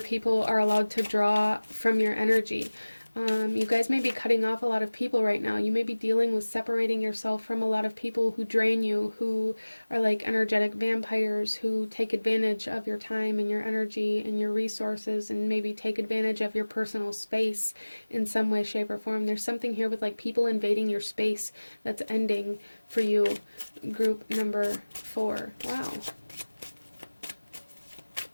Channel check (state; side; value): inverted; both; correlation -1.00